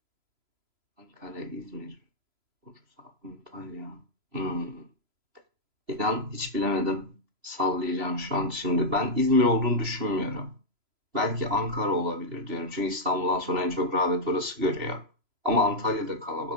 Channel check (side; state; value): left; late; 3.0 ms